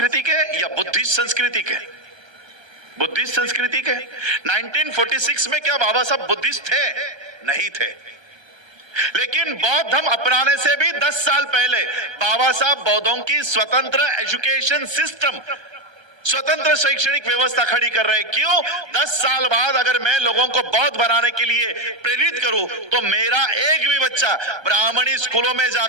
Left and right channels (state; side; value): late; left; 1.3 ms